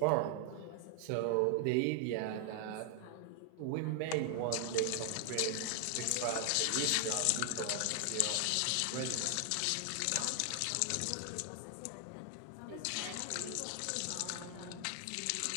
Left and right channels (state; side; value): different; both; correlation 0.00